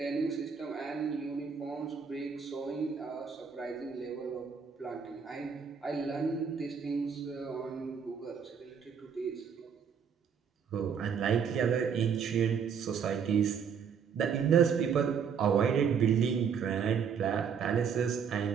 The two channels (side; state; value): left; quieter; 6.8 dB